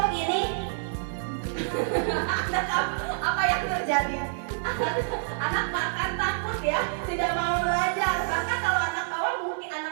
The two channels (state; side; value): silent; left; 55 dB below the other